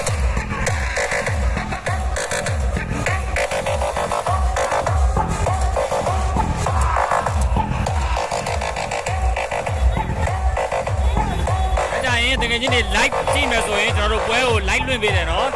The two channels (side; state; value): both; identical; correlation 1.00